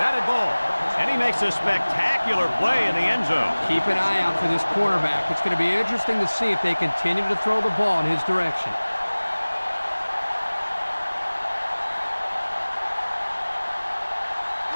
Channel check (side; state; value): both; inverted; correlation -1.00